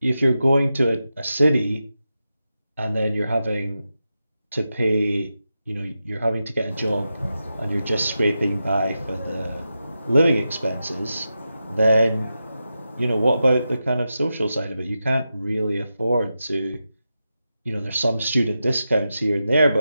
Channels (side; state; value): both; inverted; correlation -0.90